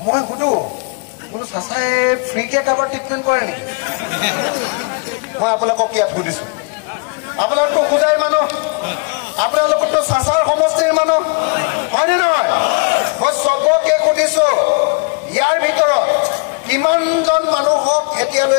মই সুধো বোলো চাচাই ফ্ৰীকে কাৰোবাৰ ট্ৰিটমেণ্ট কৰে নেকি মই আপোনালোকক ইয়াত সুধিছো আপোনালোকতো খুদাই মানুহ আপোনালোকতো চাচাৰ সমষ্টিৰ মানুহ হয়নে নহয় মই চবকে সুধিছো ইয়াৰ ভিতৰত কিমানজন মানুহক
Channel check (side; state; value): right; quieter; 34.1 dB